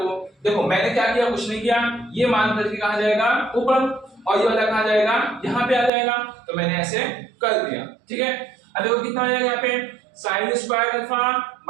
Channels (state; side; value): drops out; left; at 5.9 s